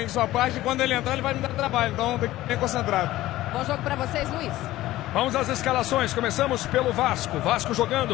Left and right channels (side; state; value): right; quieter; 16.0 dB